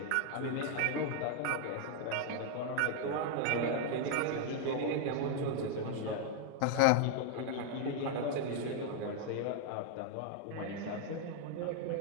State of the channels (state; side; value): different; both; correlation 0.00